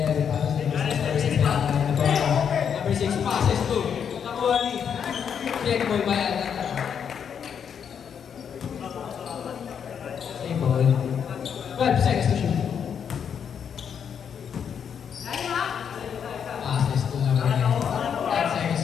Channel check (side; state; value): right; quieter; 7.7 dB